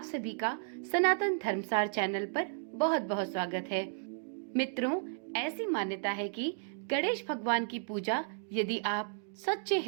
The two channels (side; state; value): left; silent; digital silence